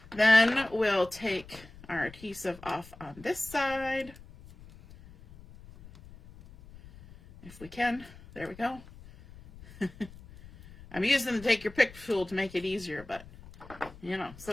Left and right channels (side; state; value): left; noise; rumble, 19 dB below the sound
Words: Then we'll take our adhesive off on this side. If we can. There we go. I'm using the take your pick tool to make it easier, but you know,